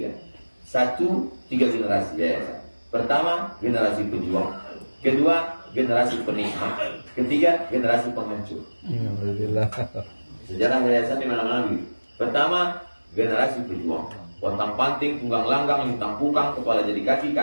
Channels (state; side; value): inverted; both; correlation -1.00